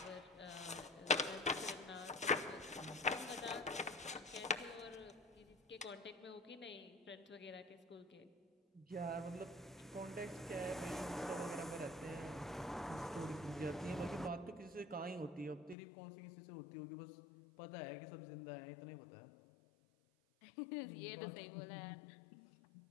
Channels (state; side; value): drops out; right; at 15.8 s